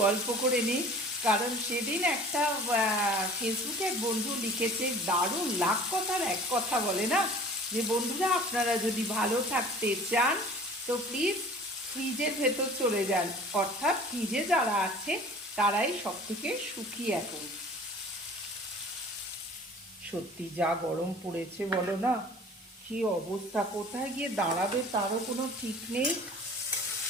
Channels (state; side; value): normal; both; correlation 0.46